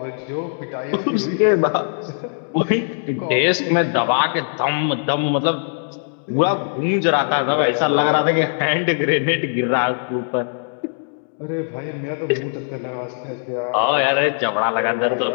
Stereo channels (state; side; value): silent; right; digital silence